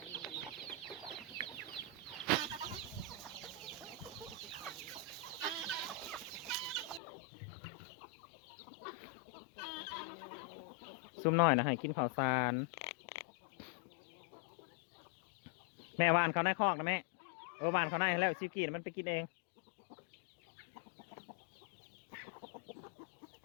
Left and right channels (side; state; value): right; drops out; at 7.0 s